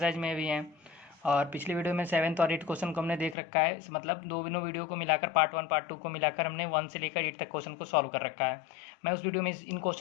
में भी हैं और पिछली वीडियो में 7th और 8th क्वेश्चन को हमने देख रखा है। मतलब दोनों वीडियो को मिलाकर पार्ट 1 पार्ट 2 को मिलाकर हमने 1 से लेकर 8 तक क्वेश्चन को सॉल्व कर रखा है। मैं उस वीडियो में इन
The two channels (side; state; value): right; drops out; at 3.4 s